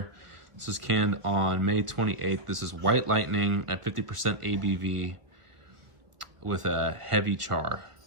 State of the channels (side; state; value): left; late; 1.5 ms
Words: this is canned on May 28th. This is White Lightning at 50% ABV with a heavy char.